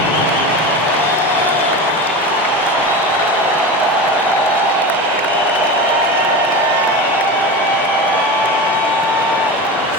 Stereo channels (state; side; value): normal; both; correlation 0.26